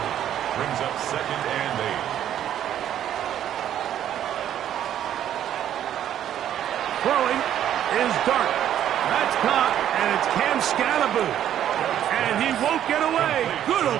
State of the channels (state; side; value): quieter; left; 10.8 dB